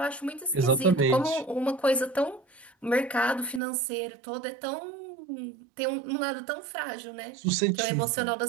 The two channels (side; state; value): left; drops out; at 3.6 s